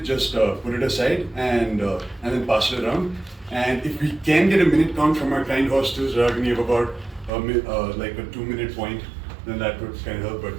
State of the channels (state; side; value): drops out; left; at 7.3 s